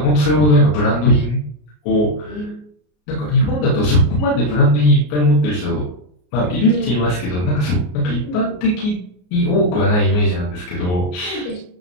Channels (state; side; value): late; right; 33 ms